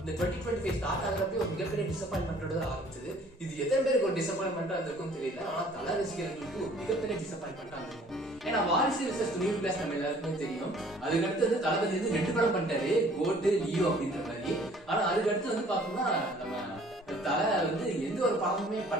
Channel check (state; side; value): normal; both; correlation 0.55